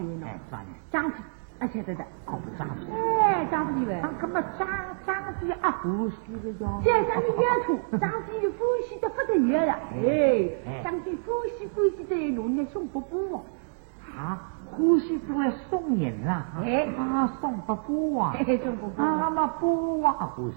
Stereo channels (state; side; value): silent; left; digital silence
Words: 呢？啥人？张飞，啊晓得的。搞不张飞？哎，张飞喂。他根本张飞啊，呼吸的呀。现在你也出，张飞就呼吸的不得了了。哎，张飞呼吸的弄得送不过。啊，呼吸不会送人啊？哎，送不过啊？送不过。那么不啊呼